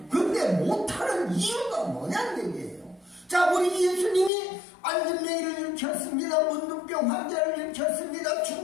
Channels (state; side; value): drops out; right; at 4.3 s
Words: 그런데 못하는 이유가 뭐냐는 얘기예요. 자, 우리 예수님이 안진뱅이를 일으켰습니다. 문둥병 환자를 일으켰습니다.